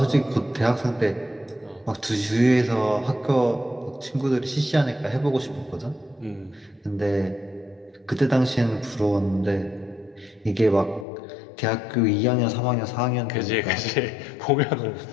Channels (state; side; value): drops out; right; at 11.1 s